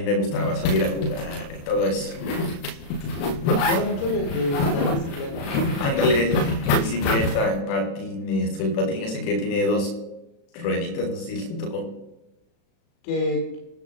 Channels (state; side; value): late; right; 36 ms